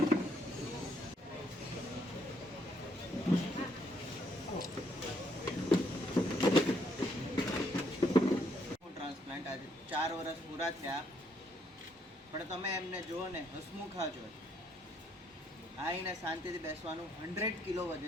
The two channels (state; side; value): normal; both; correlation 0.71